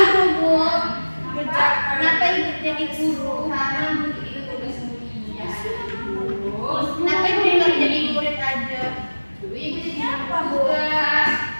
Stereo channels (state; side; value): inverted; both; correlation -1.00